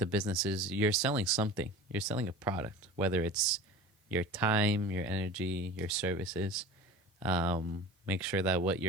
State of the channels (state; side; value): normal; both; correlation 0.36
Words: business is, you're selling something. You're selling a product, whether it's your time, your energy, your services. Make sure that what